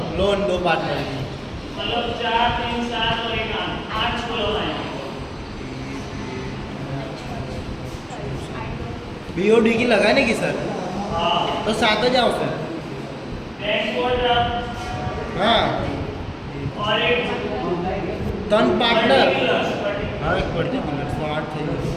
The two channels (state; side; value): identical; both; correlation 1.00